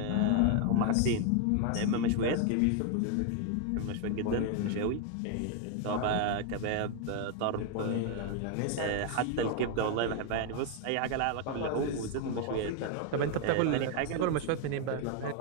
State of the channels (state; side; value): different; both; correlation 0.01